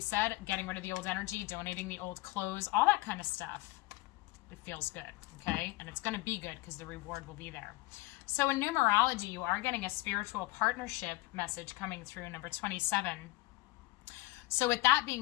said, getting rid of the old energy, donating the old clothes, all that kind of stuff. It feels good, okay? And it's going to be good because the reward will be there. So in numerology, you are getting a spiritual partnership message coming through, number 27. So with that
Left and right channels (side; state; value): right; quieter; 20.0 dB